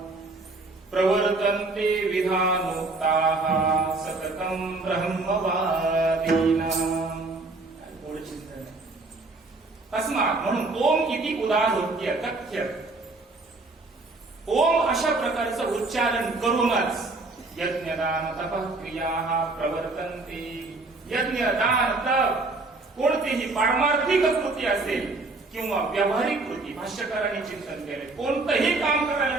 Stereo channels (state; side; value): quieter; left; 3.3 dB